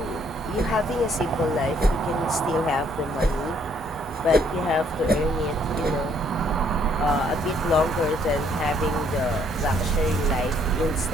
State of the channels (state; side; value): normal; both; correlation 0.66